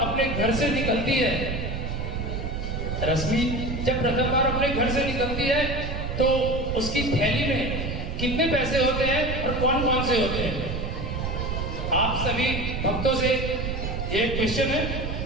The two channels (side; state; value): right; noise; rumble, 4 dB below the sound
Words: अपने घर से निकलती है, रश्मि जब प्रथम बार अपने घर से निकलती है तो उसकी थैली में कितने पैसे होते हैं और कौन कौन से होते हैं? आप सभी भक्तों से ये क्वेश्चन है